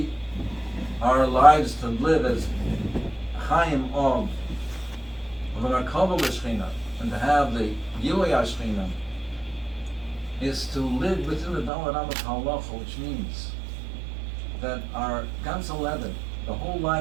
our lives to live as Chaim of an Arkava L'Shechina, and to have the Gilui HaShechina, is to live within the Daled Amishal Halacha, which means that our Gans 11, the whole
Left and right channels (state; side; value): drops out; left; at 11.7 s